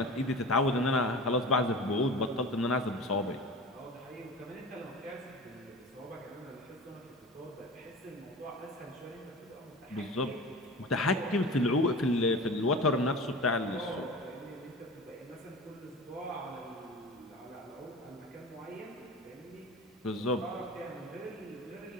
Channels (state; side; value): normal; both; correlation 0.34